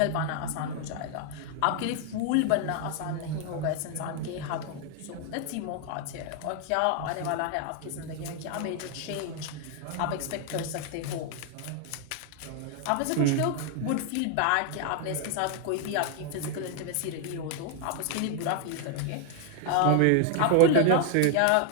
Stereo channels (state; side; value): different; both; correlation 0.01